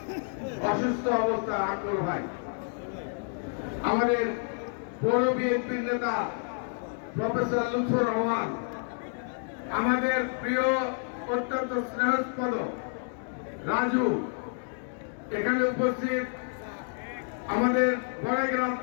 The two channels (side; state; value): right; silent; 58 dB below the other